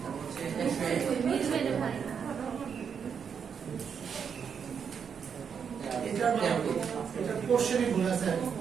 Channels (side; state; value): left; quieter; 6.9 dB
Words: মিলবে না ভাই। এটা কোশ্চেনই ভুল আছে।